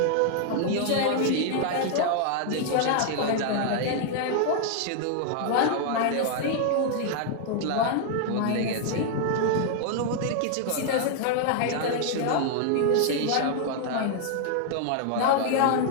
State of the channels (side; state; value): both; different; correlation 0.00